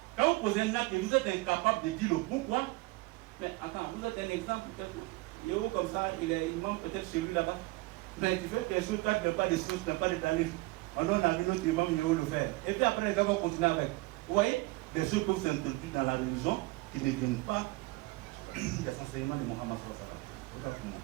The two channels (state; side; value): quieter; left; 22.1 dB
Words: Quand vous posez un acte et vous êtes incapable de dire le pourquoi, mais attends, vous êtes un exemple, Yého comme ça, il est imam peut-être chez lui là-bas. Mais tu fais tes choses, tu n'as pas de sources, tu n'as pas d'étalé. On a vu notre imam Yého le faire. Et puis après, les gars vont continuer avec. Vous voyez, des choses peuvent s'introduire dans la religion qui ne viennent pas des enseignements de Mohammed sallallahu.